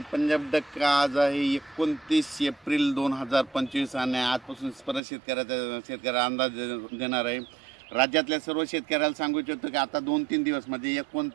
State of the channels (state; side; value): drops out; left; at 5.0 s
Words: पंजाब डक्का. आज आहे 29 एप्रिल 2025 आणि आजपासून परत शेतकऱ्याला अंदाज देणार आहे. राज्यातल्या सर्व शेतकऱ्याला सांगू इच्छितो की आता 2-3 दिवस म्हणजे